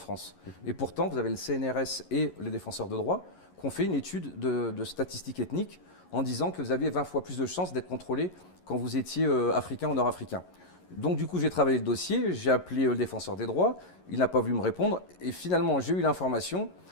Et pourtant, vous avez le CNRS et les défenseurs de droit qui ont fait une étude de statistiques ethniques en disant que vous aviez 20 fois plus de chances d'être contrôlé quand vous étiez africain ou nord-africain. Donc, du coup, j'ai travaillé le dossier, j'ai appelé le défenseur des droits, il n'a pas voulu me répondre. Et finalement, j'ai eu l'information.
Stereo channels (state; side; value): late; right; 11 ms